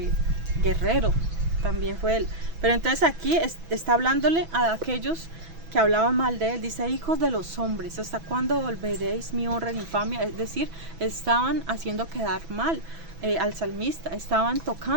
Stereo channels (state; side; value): late; left; 6.1 ms